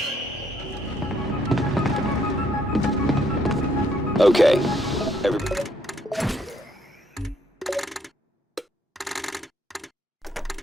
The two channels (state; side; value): normal; both; correlation 0.69